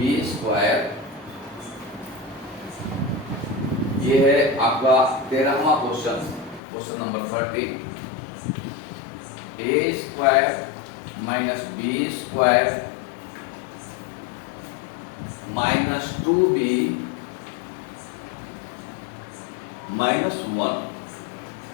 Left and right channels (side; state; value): right; drops out; at 6.6 s